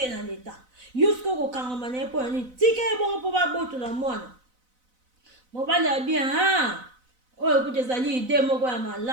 na leta yo soki okokangama na ye mpo nani tika ye bongo mpo babotola mwana mobali abia oyo kutu ezali ide moko ya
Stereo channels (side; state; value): left; late; 4.0 ms